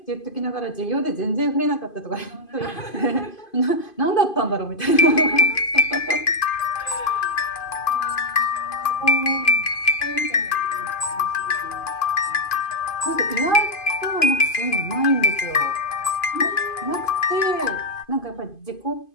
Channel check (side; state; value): right; late; 2.5 ms